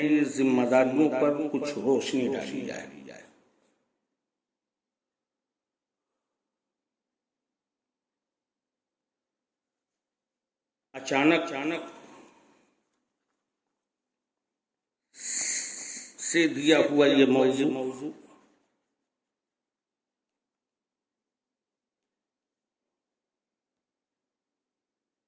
ذمہ داریوں پر کچھ روشنی ڈالی جائے۔ اچانک سے دیا ہوا یہ موضوع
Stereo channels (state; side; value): identical; both; correlation 1.00